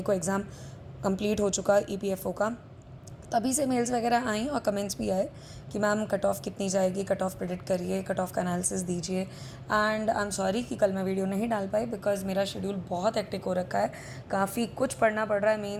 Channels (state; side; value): identical; both; correlation 1.00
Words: को एग्ज़ाम कंप्लीट हो चुका EPFO का, तभी से मेल्स वगैरह आई और कमेंट्स भी आए कि मैम कट ऑफ कितनी जाएगी, कट ऑफ प्रेडिक्ट करिए, कट ऑफ का एनालिसिस दीजिए। एंड आई एम सॉरी कि कल मैं वीडियो नहीं डाल पाई बिकॉज मेरा शेड्यूल बहुत हेक्टिक हो रखा है। काफ़ी कुछ पढ़ना पड़ रहा है